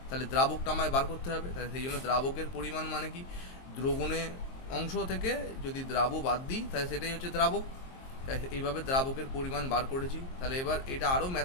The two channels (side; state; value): right; late; 22 ms